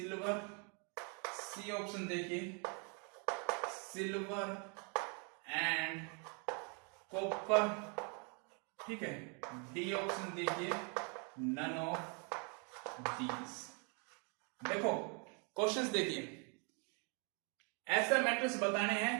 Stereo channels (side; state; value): left; quieter; 36.4 dB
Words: C option देखिए silver and copper, ठीक है। डी ऑप्शन देखिए नन ऑफ दीज। देखो क्वेश्चंस देखिए, ऐसे मेटल्स बताने